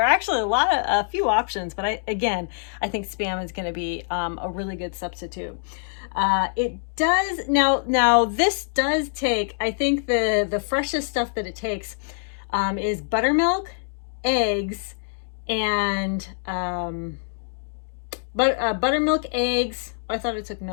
are actually a few options, but I think Spam is going to be a really good substitute. It does now this does take, I think the freshest stuff that it takes is buttermilk, eggs, and buttermilk, eggs. I thought it took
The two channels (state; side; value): silent; right; digital silence